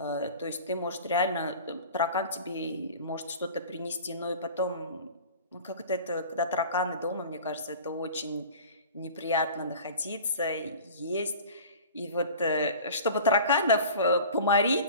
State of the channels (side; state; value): both; inverted; correlation -0.40